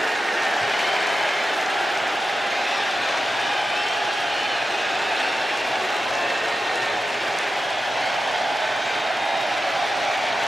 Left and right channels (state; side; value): normal; both; correlation 0.91